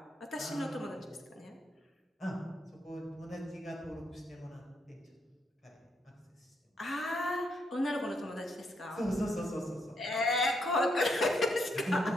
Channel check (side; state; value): both; normal; correlation 0.77